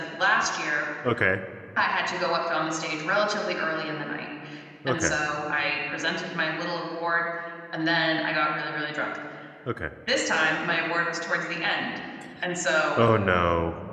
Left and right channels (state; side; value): identical; both; correlation 1.00